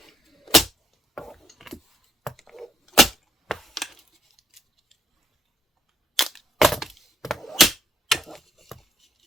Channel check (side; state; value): both; normal; correlation 0.72